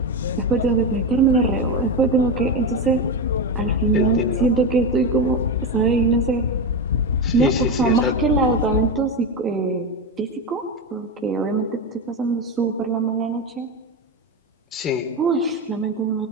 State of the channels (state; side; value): normal; both; correlation 0.16